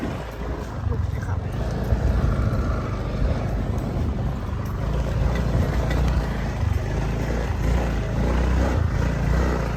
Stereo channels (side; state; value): both; identical; correlation 1.00